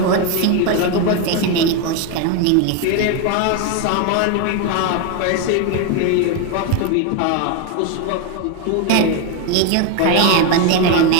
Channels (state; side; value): different; both; correlation 0.02